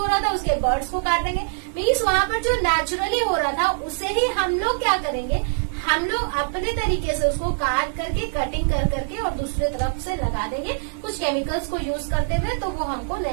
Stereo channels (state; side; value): silent; left; digital silence